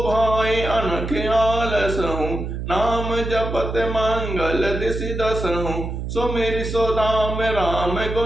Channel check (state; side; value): noise; right; hum, 5 dB below the sound